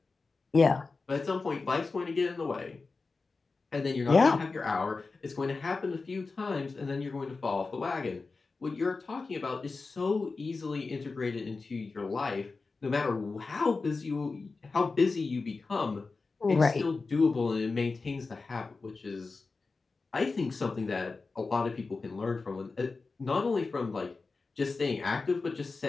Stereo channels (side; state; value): right; quieter; 4.0 dB